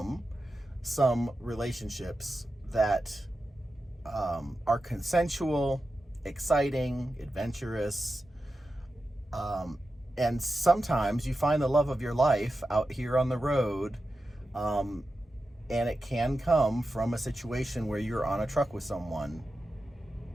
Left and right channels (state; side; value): normal; both; correlation 0.91